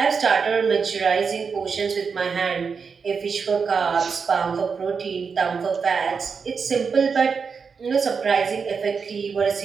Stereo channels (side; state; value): left; quieter; 5.6 dB